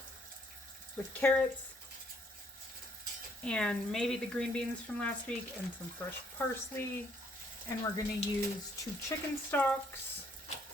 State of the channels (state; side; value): normal; both; correlation 0.67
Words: with carrots and maybe the green beans from last week and some fresh parsley. And we're going to use 2 chicken stocks,